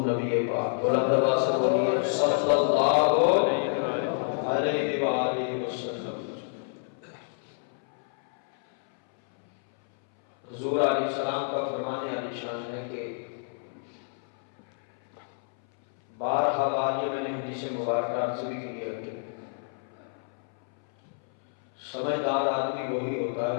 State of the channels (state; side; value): silent; right; 59 dB below the other